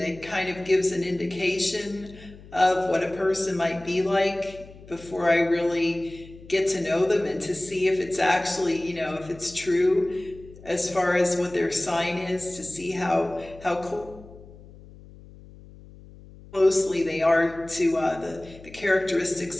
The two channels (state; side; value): noise; left; hum, 20 dB below the sound